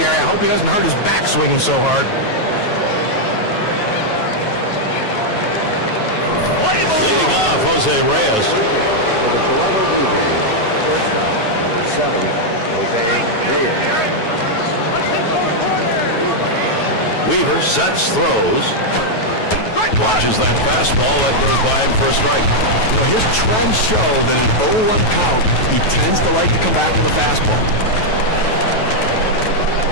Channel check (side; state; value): right; late; 9.2 ms